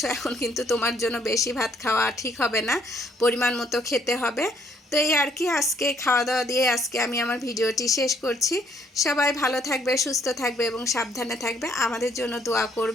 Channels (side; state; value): both; normal; correlation 0.67